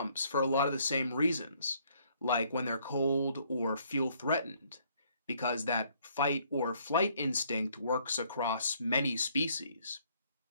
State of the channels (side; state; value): both; inverted; correlation -0.65